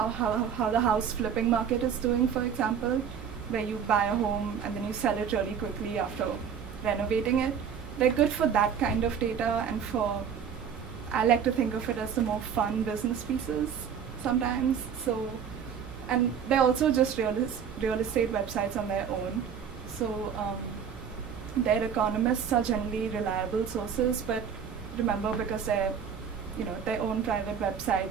the house flipping market is doing, for example, where you buy a home and then you sell it really quickly after renovating it. They're good for that kind of data, and I like to think of it as the more fun business pieces sometimes. So, and they're also just real estate websites on their own. So their economists are generally reliable sources, but remember, because they're their own private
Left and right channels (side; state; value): left; quieter; 7.5 dB